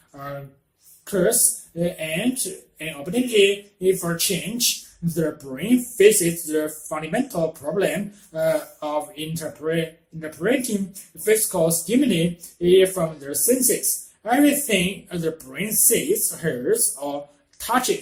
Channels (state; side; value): identical; both; correlation 1.00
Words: curse and an opportunity for change. The brain faces the fundamental problem of interpreting physical stimuli from the senses. Everything the brain sees, hears, or